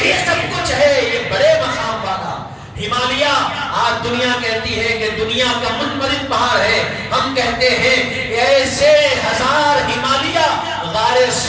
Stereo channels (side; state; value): both; identical; correlation 1.00